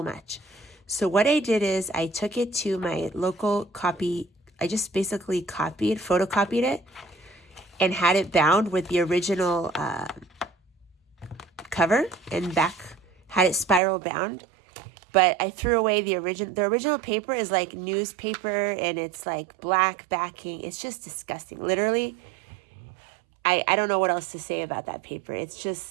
much. So what I did is I took it to my local copy. I just basically photocopied it, and had it bound with the original cover and back, had it spiral bound. But I threw away the original paper is like newspaper, and it's like black backing. It's just disgusting. Literally, I don't know what else to say about that paper. It's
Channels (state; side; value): drops out; left; at 13.8 s